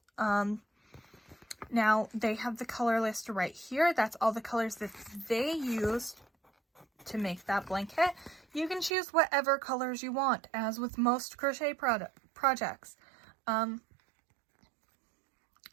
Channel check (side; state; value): left; drops out; at 8.9 s